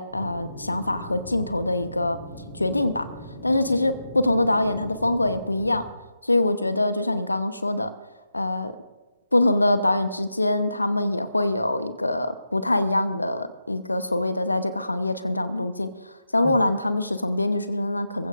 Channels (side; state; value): both; inverted; correlation -0.88